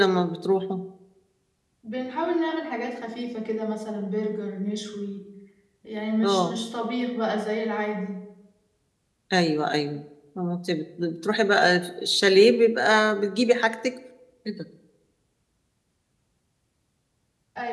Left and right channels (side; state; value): both; identical; correlation 1.00